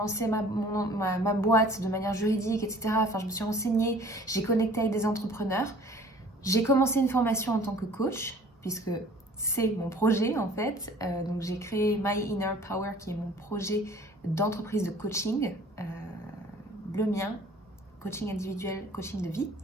ma boîte de manière juridique, etc. Enfin, je me suis renseignée, j'ai connecté avec des entrepreneurs. J'ai commencé une formation en tant que coach, puisque c'est mon projet en fait. Donc j'ai créé My Inner Power, qui est mon projet d'entreprise de coaching, le mien, coaching individuel, coaching de vie.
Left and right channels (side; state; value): both; normal; correlation 0.50